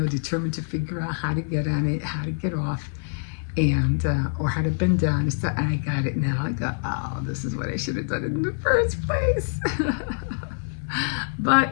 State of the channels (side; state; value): right; silent; 62 dB below the other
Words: to figure out how to get on it, how to get off, and or how to bend down and stuff. And I got it now. I got, oh, this is what I should have done in the first place. But